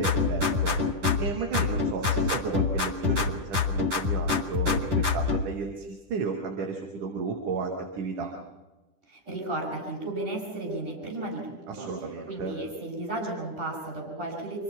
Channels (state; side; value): late; left; 10 ms